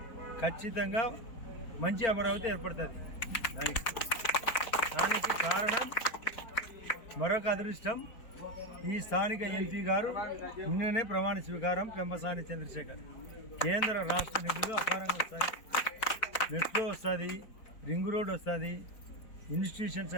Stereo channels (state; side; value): late; right; 4.4 ms